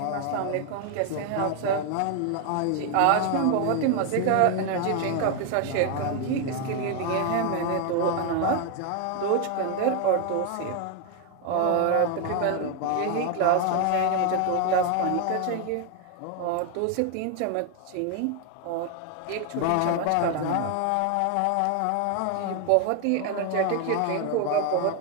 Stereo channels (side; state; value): both; different; correlation 0.01